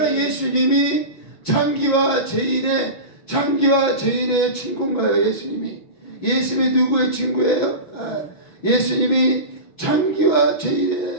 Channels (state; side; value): late; right; 5.9 ms